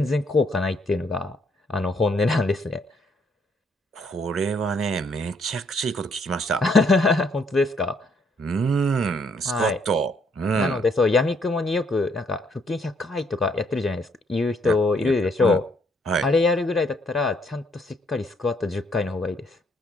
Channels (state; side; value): normal; both; correlation 0.69